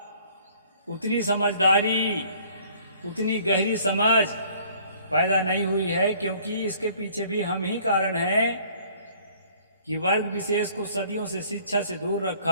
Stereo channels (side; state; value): both; inverted; correlation -0.57